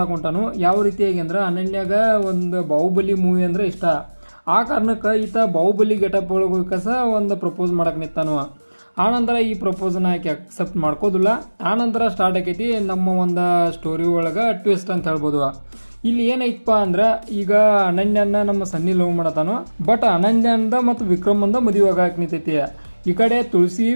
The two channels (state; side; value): inverted; both; correlation -1.00